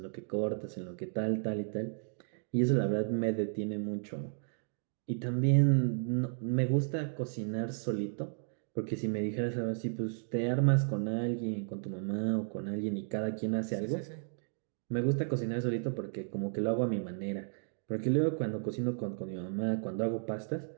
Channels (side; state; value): left; silent; digital silence